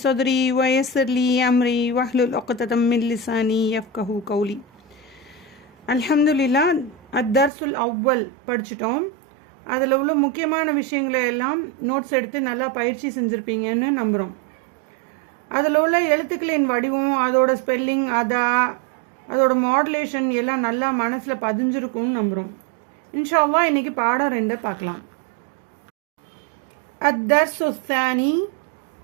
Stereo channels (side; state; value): left; drops out; at 7.5 s